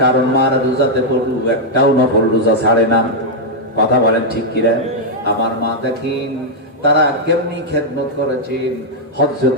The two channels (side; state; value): both; normal; correlation -0.03